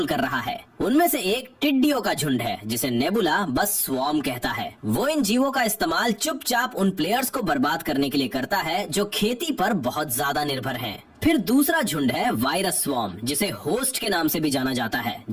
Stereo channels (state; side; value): identical; both; correlation 1.00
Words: कर रहा है। उनमें से एक टिड्डियों का झुंड है जिसे नेबुला बस स्वॉर्म कहता है। वो इन जीवों का इस्तेमाल चुपचाप उन प्लेयर्स को बर्बाद करने के लिए करता है जो खेती पर बहुत ज्यादा निर्भर हैं। फिर दूसरा झुंड है वायरस स्वॉर्म, जिसे होस्ट के नाम से भी जाना जाता है,